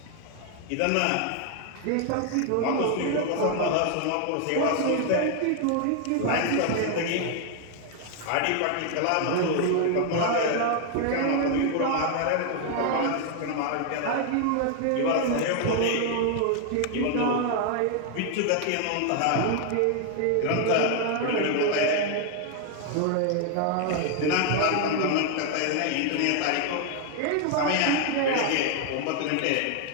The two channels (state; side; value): different; both; correlation 0.00